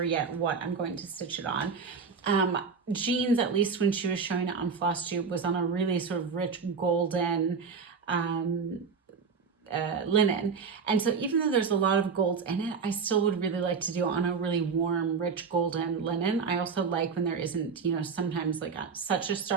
yet what I'm going to stitch it on. Jean's, at least when she was showing it on Flosstube, was on a really sort of rich golden linen, and so even though there's a lot of golds in it, I still would really like to do on a really warm, rich golden linen. I also like when there isn't, sometimes like such a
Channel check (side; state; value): left; quieter; 5.5 dB